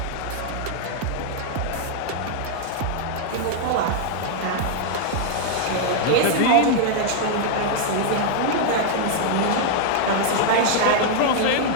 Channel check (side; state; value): both; different; correlation 0.00